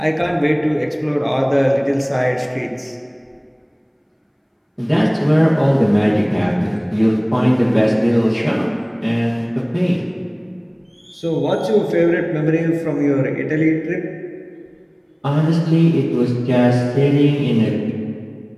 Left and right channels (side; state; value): both; identical; correlation 1.00